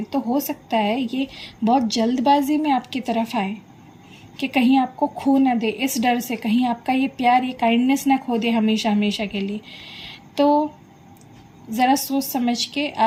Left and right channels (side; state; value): both; identical; correlation 1.00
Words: तो हो सकता है ये बहुत जल्दबाजी में आपकी तरफ आए कि कहीं आपको खो ना दे, इस डर से कहीं आपका ये प्यार, ये काइंडनेस ना खो दे हमेशा हमेशा के लिए। तो ज़रा सोच समझ के